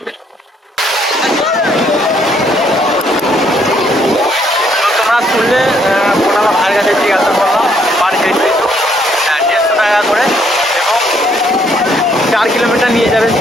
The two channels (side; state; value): both; normal; correlation 0.68